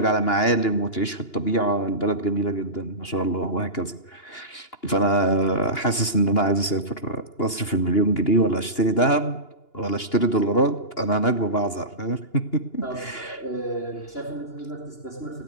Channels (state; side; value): late; right; 2.9 ms